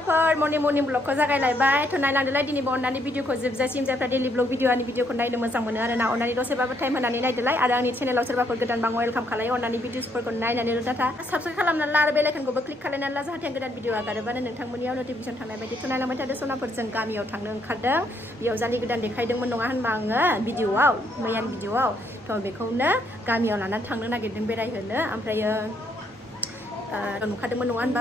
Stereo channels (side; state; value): both; normal; correlation 0.72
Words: मर्निं ब्लगखौ जागायलायबाय थ' नायलांदोलाय दिनैबो अननानै भिडिअखौ जोबजासिम जायफ्रा डेलि ब्लग भिडिअनि भिडिअखौ नायनो मोजां मोनो आरोना अननानै दसेबाबो टाइम होनानै नायदोलाय आरो आंनि चेनेलाव सोरबाफोर गोदान बां वेलकाम खालायो अननानै भिडिअसफोरखौ नायनानै डाटा साबस्क्राइब खालामनानै ला आरो बेल आइकनखौबो क्लिक खालामनानै ला जाहाथे गोदान भिडिअ आगारोबानो नोंथांमोननियाव नटिफिकेसन थांनाय बायदि थ' नायलांबाय थादो सनाफोर जों गामियाव थांनो ओंखारदों बेयाव जालि गोदान देखायदोंमोन नङा होनबा आङो भिडिअआव मैयानि भिडिअआव थ' बेखौनो गामियाव लानानै थांनो नागिरदों बेरायहोनो ओमफ्रायो नुखादोंमोन नङा होनबा